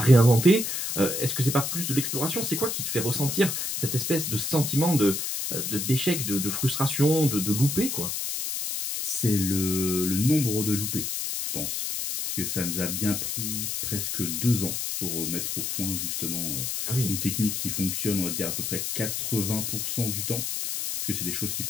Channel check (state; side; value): noise; left; hiss, 2 dB below the sound